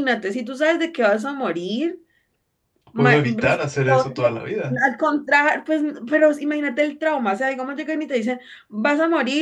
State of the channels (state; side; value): identical; both; correlation 1.00